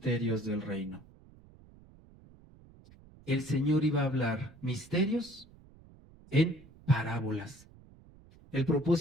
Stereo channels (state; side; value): noise; right; rumble, 24 dB below the sound